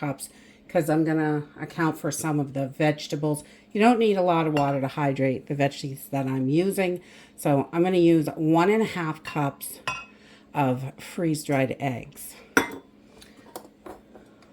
because I'm going to account for some of the vegetables. You don't need a lot of water to hydrate the veggies that I'm using. So I'm going to use 1 1/2 cups of freeze-dried eggs.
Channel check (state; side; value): identical; both; correlation 1.00